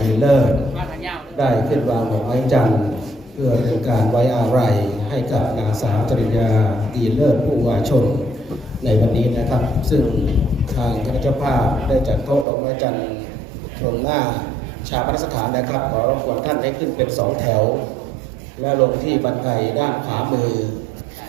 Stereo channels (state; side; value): drops out; left; at 12.5 s